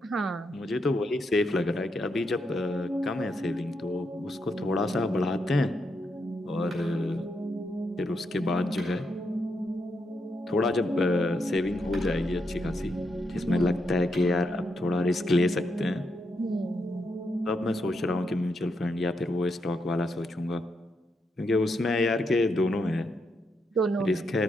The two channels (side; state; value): both; normal; correlation 0.81